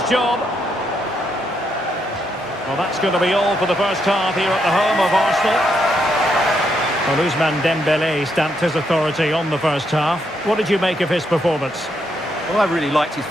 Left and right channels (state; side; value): normal; both; correlation 0.78